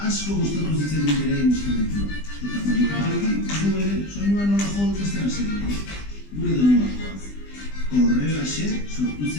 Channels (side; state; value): right; late; 20 ms